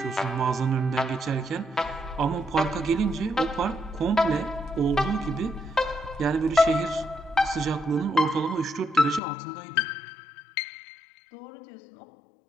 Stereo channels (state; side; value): drops out; right; at 9.2 s